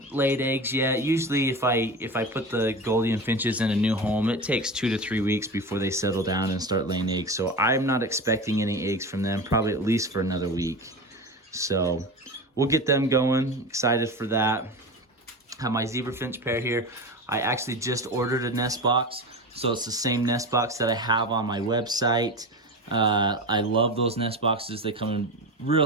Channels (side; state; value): both; normal; correlation 0.26